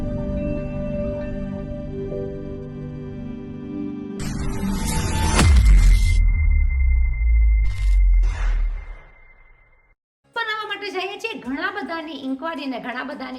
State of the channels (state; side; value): identical; both; correlation 1.00